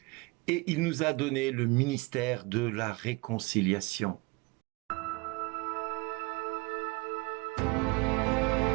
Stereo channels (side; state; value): left; quieter; 26.4 dB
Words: Et il nous a donné le ministère de la réconciliation.